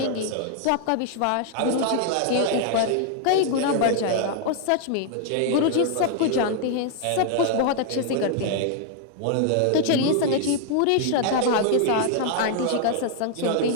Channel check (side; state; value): both; different; correlation 0.00